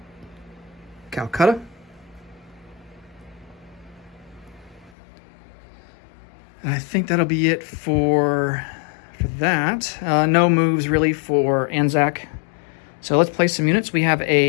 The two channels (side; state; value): right; drops out; at 4.9 s